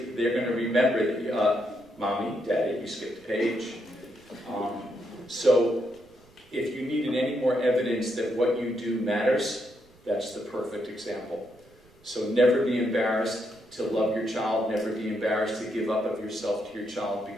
they're going to remember that, Mommy, Daddy, you skipped a page. So if you needed any more evidence that what you do matters, that's the perfect example. So never be embarrassed to love your child, never be embarrassed to give up of yourself to your child,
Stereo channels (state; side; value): noise; right; rumble, 29 dB below the sound